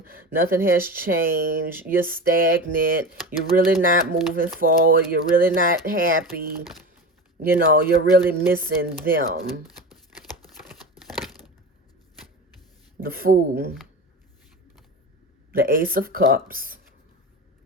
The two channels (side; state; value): both; normal; correlation 0.27